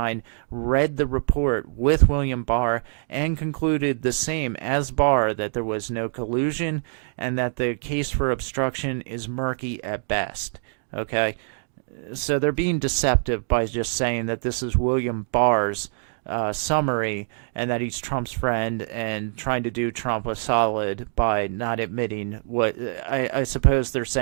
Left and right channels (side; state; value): left; silent; digital silence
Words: read the report with William Barr and concluded the same as Barr, that there was no collusion and that the case for obstruction is murky at best. Okay? So they're being deceptive by just saying that this is William Barr's summary, and that he's Trump's friend and trying to do Trump a solid by not admitting what I suppose they're